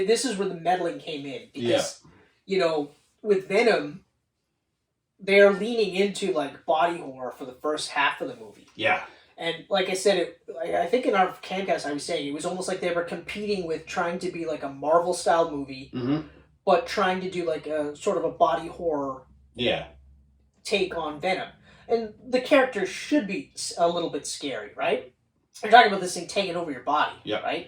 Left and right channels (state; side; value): identical; both; correlation 1.00